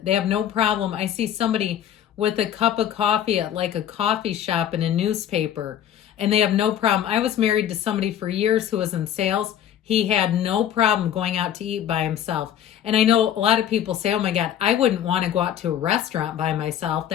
They have no problem. I see somebody with a cup of coffee at like a coffee shop and a newspaper, and they have no problem. I was married to somebody for years who was in sales. He had no problem going out to eat by himself. And I know a lot of people say, oh my God, I wouldn't want to go out to a restaurant by myself.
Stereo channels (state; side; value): quieter; right; 10.2 dB